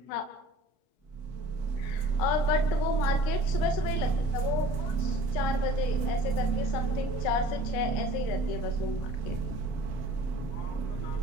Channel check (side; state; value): right; late; 32 ms